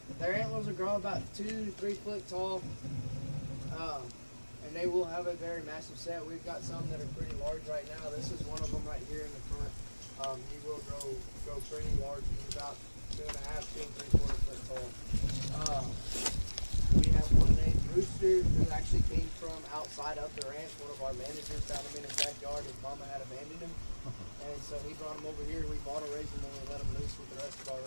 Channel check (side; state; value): both; inverted; correlation -1.00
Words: Their antlers will grow about 2 to 3 foot tall. And they will have a very massive set. We've got some that are pretty large right now. This is one of them right here in the front. He will grow pretty large. He's about 2.5, 2 3/4 foot tall. We have one named Rooster who actually came from outside of the ranch. One of our managers found him in his backyard. His mama had abandoned him. And so he brought him over here. We bought a raise him and we let him loose with the rest of our